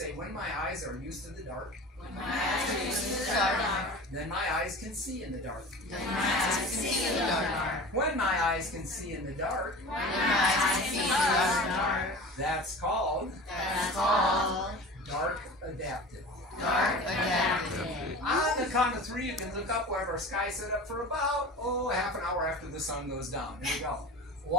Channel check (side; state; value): both; normal; correlation 0.36